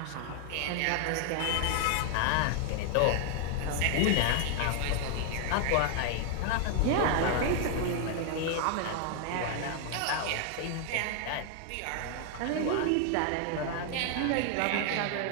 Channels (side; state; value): both; different; correlation 0.00